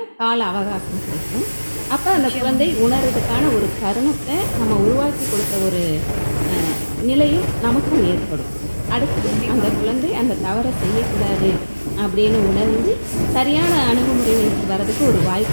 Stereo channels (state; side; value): inverted; both; correlation -1.00